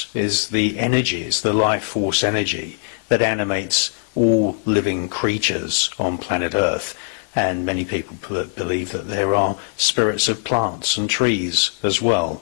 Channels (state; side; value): silent; right; digital silence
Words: is the energy, is the life force energy that animates all living creatures on planet Earth. And many people believe that there are spirits of plants and trees as well.